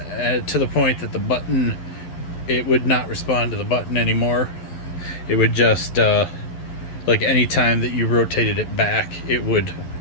the point that the button, it would not respond to the button anymore. It would just like any time that you rotated it back, it would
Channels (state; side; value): late; right; 11 ms